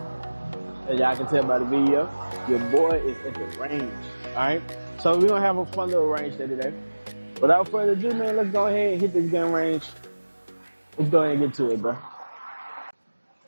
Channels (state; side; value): inverted; both; correlation -1.00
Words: as y'all can tell by the video, your boy is at the range, all right? So we're gonna have a fun little range day today. Without further ado, man, let's go ahead and hit this gun range. Let's go ahead and get to it, bro.